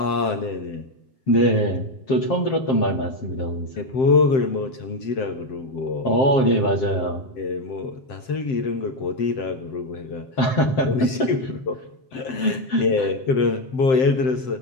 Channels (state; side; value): late; right; 7.7 ms